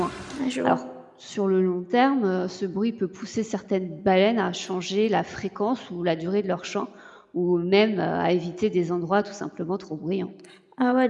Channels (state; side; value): identical; both; correlation 1.00